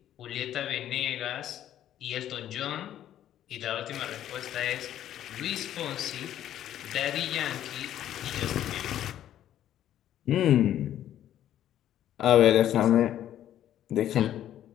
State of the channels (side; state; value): right; quieter; 11.6 dB